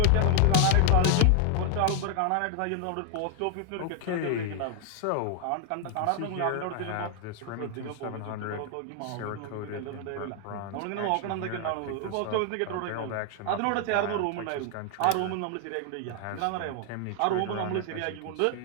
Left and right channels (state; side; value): different; both; correlation 0.00